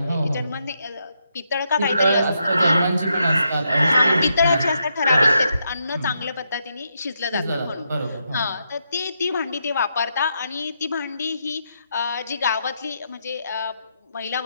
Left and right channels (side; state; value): both; inverted; correlation -0.80